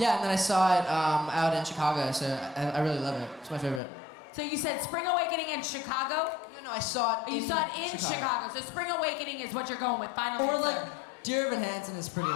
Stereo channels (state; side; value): drops out; right; at 3.8 s